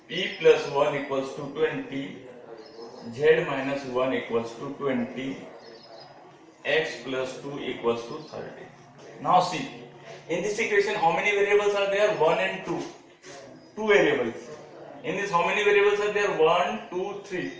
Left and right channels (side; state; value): both; identical; correlation 1.00